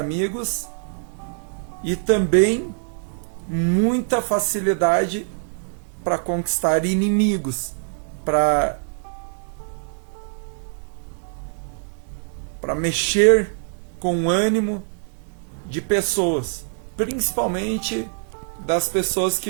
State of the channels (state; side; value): silent; left; 63 dB below the other